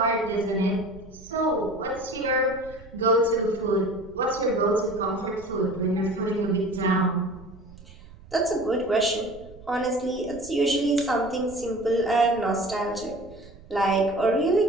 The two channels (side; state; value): right; noise; rumble, 20 dB below the sound